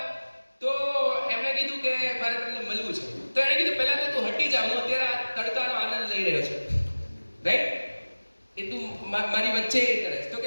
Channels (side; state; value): both; inverted; correlation -1.00